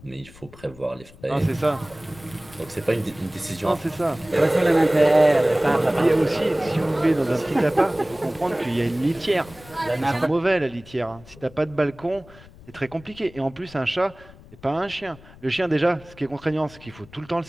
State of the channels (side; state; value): left; noise; rumble, 22 dB below the sound